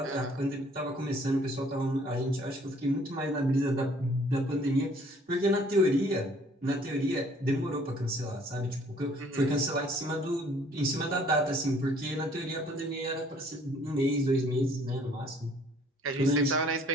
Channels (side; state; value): both; normal; correlation 0.58